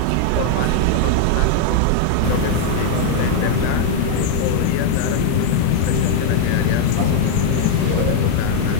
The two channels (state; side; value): different; both; correlation 0.00